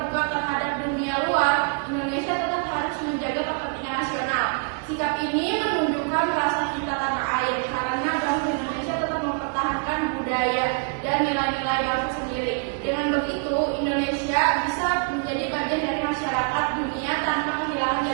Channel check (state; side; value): quieter; left; 38.4 dB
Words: terhadap dunia luar, Indonesia tetap harus menjaga kepentingan nasional. Sikap ini menunjukkan rasa cinta tanah air karena bangsa Indonesia tetap mempertahankan budaya dan nilai-nilai bangsa sendiri. Dengan begitu, Indonesia bisa menjadi bagian dari masyarakat dunia tanpa kehilangan